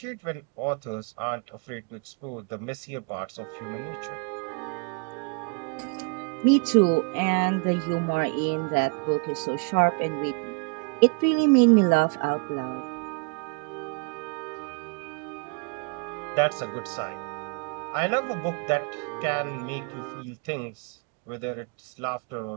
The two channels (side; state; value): left; quieter; 33.3 dB